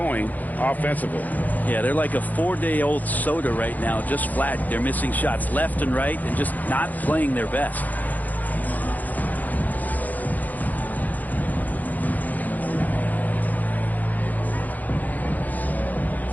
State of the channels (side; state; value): right; late; 0.081 ms